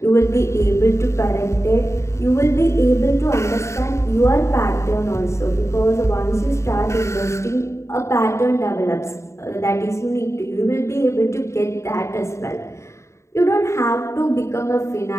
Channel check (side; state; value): right; late; 0.14 ms